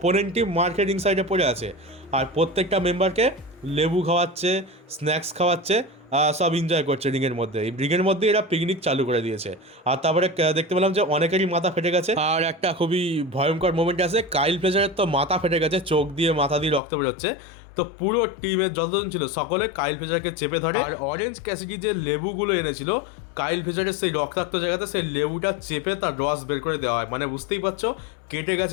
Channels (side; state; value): right; drops out; at 16.8 s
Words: টিম মার্কে রিং সাইডে পড়ে আছে, আর প্রত্যেকটা মেম্বারকে লেবু খাওয়াচ্ছে, স্ন্যাক্স খাওয়াচ্ছে, সব এনজয় করছে রিংয়ের মধ্যে। এই রিংয়ের মধ্যে এরা পিকনিক চালু করে দিয়েছে। আর তারপরে দেখতে পেলাম যে অনেকেরই মাথা ফেটে গেছে, আর একটা খুবই ভয়ঙ্কর মোমেন্ট আছে, কাইল ফ্লেচারের তো মাথা ফেটে গেছে, চোখ দিয়ে মাথা দিয়ে রক্ত বেরোচ্ছে। তো পুরো টিমের যতজন ছিল সকলে কাইল ফ্লেচারকে চেপে ধরে, আর অরেঞ্জ ক্যাসিডি যে লেবুগুলো এনেছিল কাইল ফ্লেচারের সেই রক্তাক্ত জায়গাতে সেই লেবুটা চেপে তার রস বের করে দেওয়া হয়। মানে বুঝতেই পারছো, কেটে